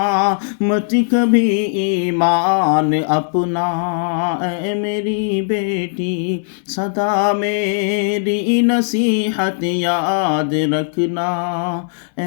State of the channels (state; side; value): silent; right; 66 dB below the other